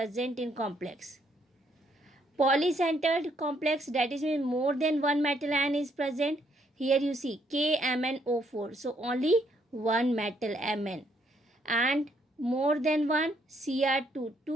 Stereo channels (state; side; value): normal; both; correlation 0.71